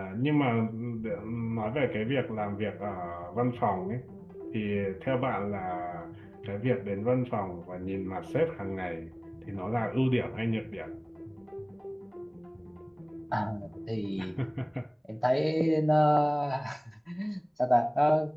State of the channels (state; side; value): identical; both; correlation 1.00